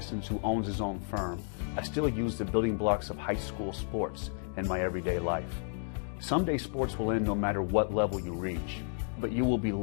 who owns his own firm, I still use the building blocks of high school sports in my everyday life. Someday sports will end no matter what level you reach, but you will be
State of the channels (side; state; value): right; silent; 55 dB below the other